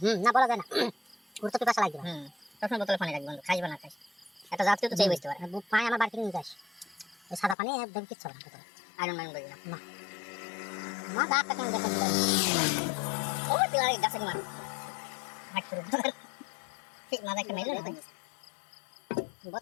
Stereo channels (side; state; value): right; drops out; at 7.6 s